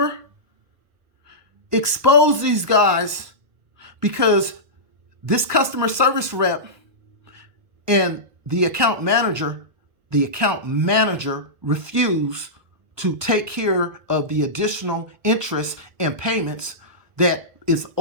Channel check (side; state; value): left; late; 1.2 ms